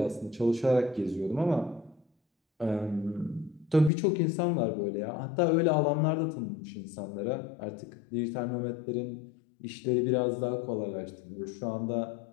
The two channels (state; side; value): drops out; right; at 3.9 s